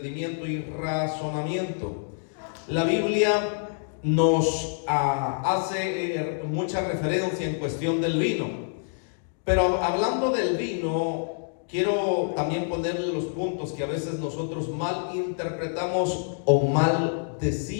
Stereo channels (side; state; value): right; silent; digital silence